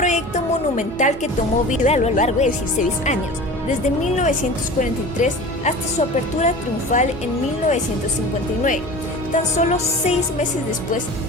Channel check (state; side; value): normal; both; correlation 0.37